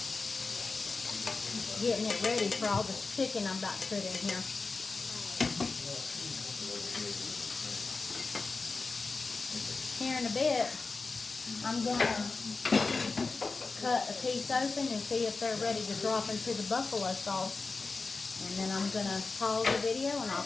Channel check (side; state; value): right; quieter; 4.0 dB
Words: Getting it ready for all the chicken I'm about to put in here. Here in a bit, I'm going to cut a piece open and see if they're ready to drop into the buffalo sauce. And then I'm going to pause the video and I'll